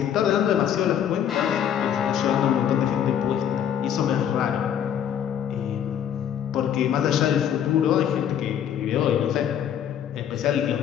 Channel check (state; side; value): quieter; right; 9.4 dB